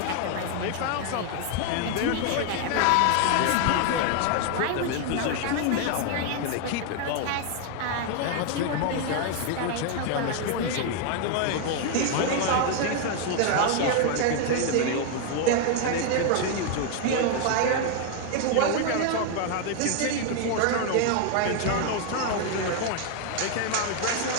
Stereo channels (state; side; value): different; both; correlation 0.00